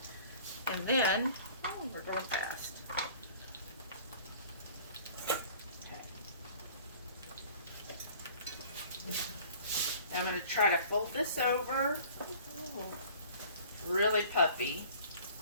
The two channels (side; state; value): both; inverted; correlation -0.49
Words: And then, oh, we're going fast. Now I'm going to try to fold this over. Ooh, really puffy.